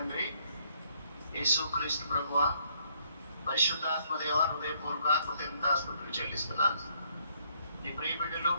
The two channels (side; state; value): both; inverted; correlation -0.68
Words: యేసుక్రీస్తు ప్రభువ, పరిశుద్ధాత్మదేవ, హృదయపూర్వక కృతజ్ఞతాస్తుతులు చెల్లిస్తున్నాను. నీ ప్రియ బిడ్డలు